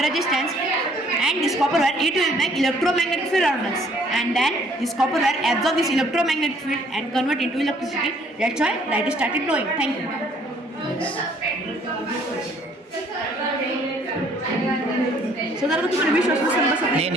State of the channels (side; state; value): both; normal; correlation 0.61